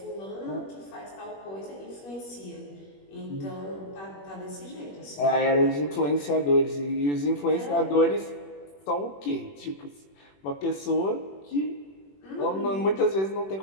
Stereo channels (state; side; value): late; right; 21 ms